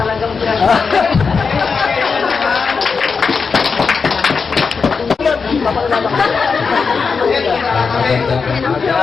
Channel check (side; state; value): right; quieter; 5.2 dB